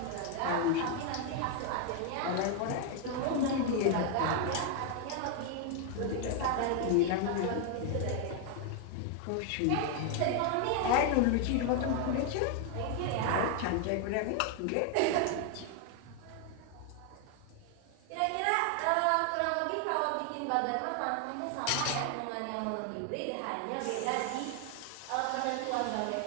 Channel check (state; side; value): different; both; correlation 0.01